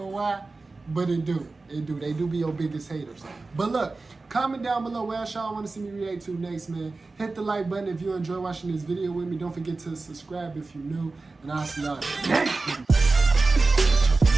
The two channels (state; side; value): quieter; left; 3.6 dB